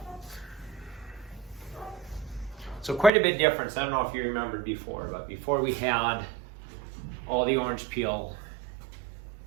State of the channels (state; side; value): drops out; left; at 3.1 s